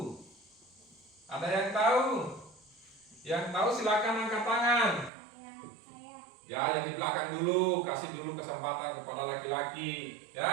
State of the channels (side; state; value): left; drops out; at 5.1 s